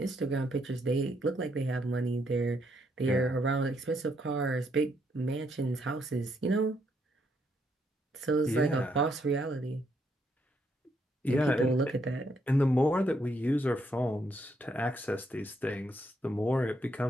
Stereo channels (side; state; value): both; normal; correlation 0.75